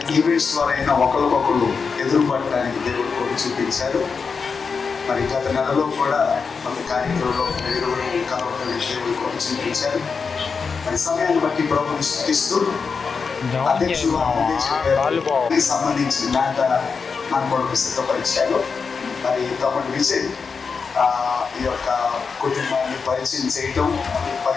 ఈవెంట్స్ ద్వారా అయినా ఒకరికొకరు ఎదురుపడటానికి దేవుడు కృప చూపించారు. మరి గత నెలలో కూడా కొంత కార్యక్రమంలో కలవడానికి దేవుడు కృప చూపించారు. మరి సమయాన్ని బట్టి ప్రభుని స్తుతిస్తూ అధ్యక్షులు సంబంధించిన మాట మన కొరకు సిద్ధపరిచారు. మరి తమ్ముడు విజయ్ ఈ యొక్క కుటుంబాన్ని పరిచయం చేయటం,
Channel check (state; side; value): quieter; right; 5.3 dB